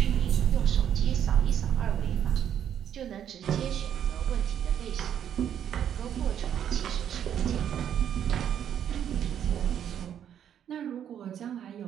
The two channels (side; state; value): left; quieter; 9.5 dB